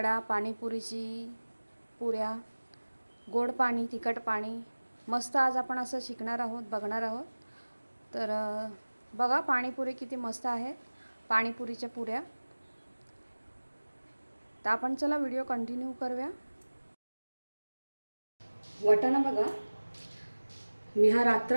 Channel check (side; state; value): both; inverted; correlation -1.00